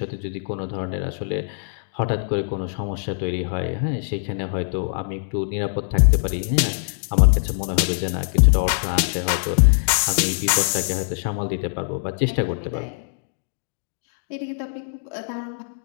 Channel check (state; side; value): silent; right; digital silence